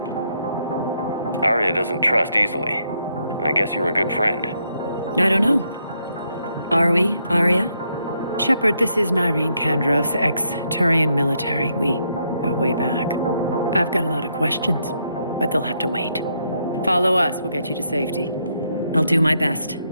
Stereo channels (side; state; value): both; inverted; correlation -0.76